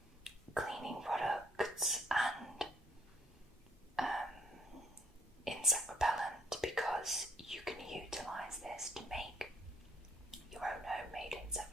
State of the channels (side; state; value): both; normal; correlation 0.66